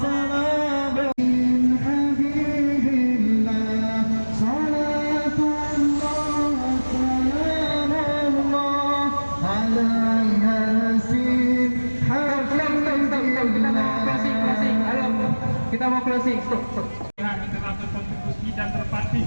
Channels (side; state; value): both; inverted; correlation -1.00